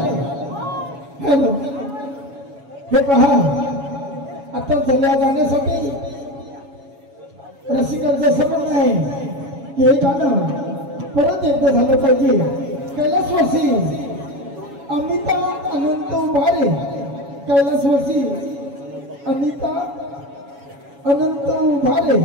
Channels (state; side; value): late; left; 7.2 ms